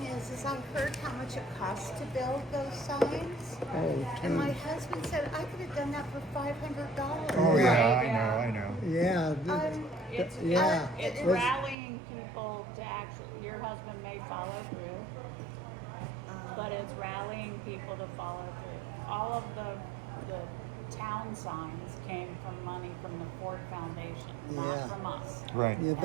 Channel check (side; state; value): left; drops out; at 11.8 s